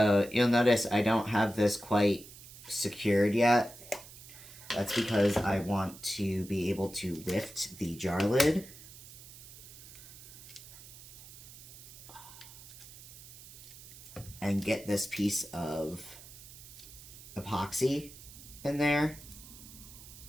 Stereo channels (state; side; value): noise; right; hiss, 17 dB below the sound